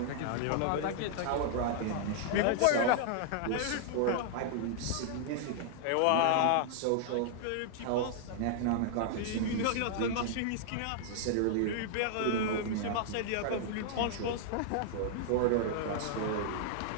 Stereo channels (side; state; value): both; different; correlation -0.01